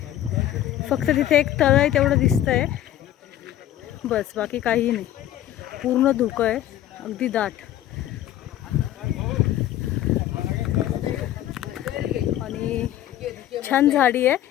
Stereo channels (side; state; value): right; quieter; 12.6 dB